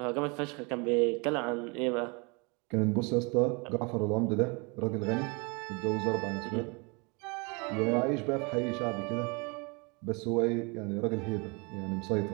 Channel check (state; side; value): quieter; left; 30.5 dB